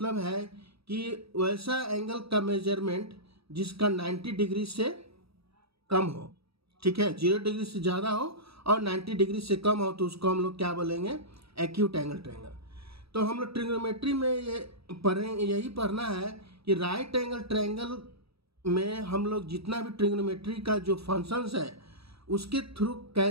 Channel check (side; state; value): left; late; 0.77 ms